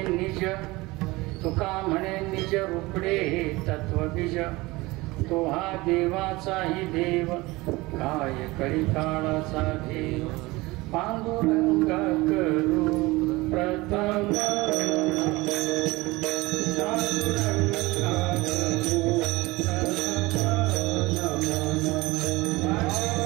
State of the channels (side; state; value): left; quieter; 21.6 dB